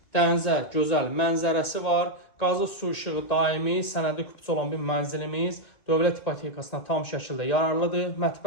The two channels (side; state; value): right; late; 2.3 ms